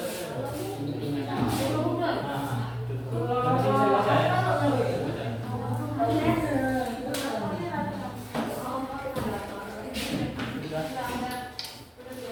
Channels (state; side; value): identical; both; correlation 1.00